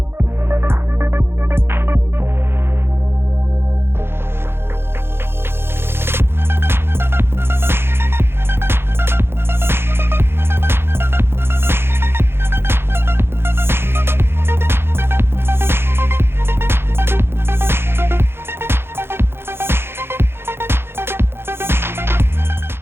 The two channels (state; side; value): late; left; 0.11 ms